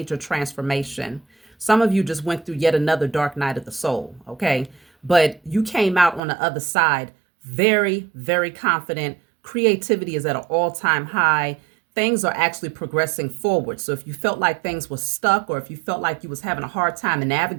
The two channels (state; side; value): drops out; left; at 6.2 s